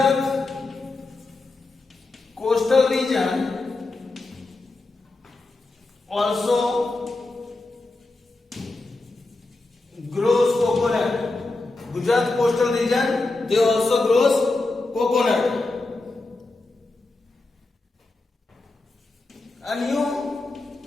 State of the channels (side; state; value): right; quieter; 3.2 dB